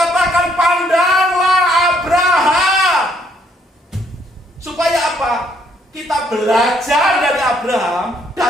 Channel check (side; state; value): both; normal; correlation 0.68